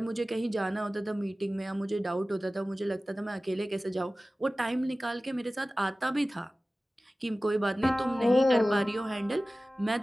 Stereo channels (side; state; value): both; normal; correlation 0.97